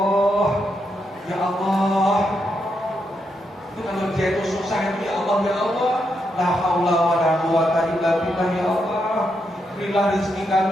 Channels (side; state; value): both; normal; correlation 0.81